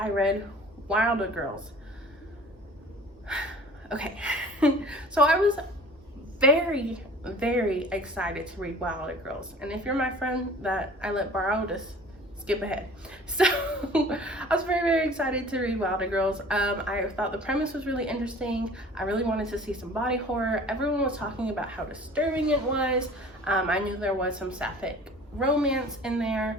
read Wilder Girls. Okay, so I was very, very excited to read Wilder Girls, and if you're my friend that I let borrow, just skip ahead. So I was very, very excited to read Wilder Girls. I thought the premise was really interesting. I really wanted to see some body horror. Everyone was talking about how disturbing it was. I knew there was some sapphic romance in there.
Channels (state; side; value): normal; both; correlation 0.46